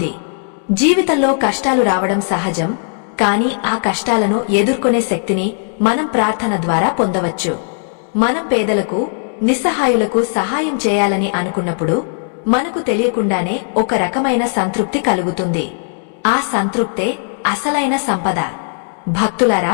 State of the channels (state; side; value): silent; right; digital silence